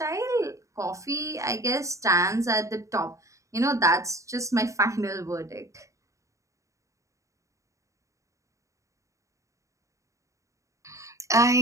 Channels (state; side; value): late; left; 0.15 ms